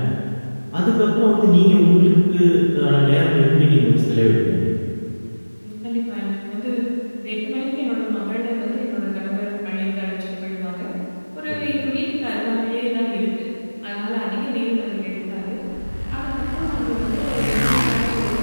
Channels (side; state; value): both; inverted; correlation -1.00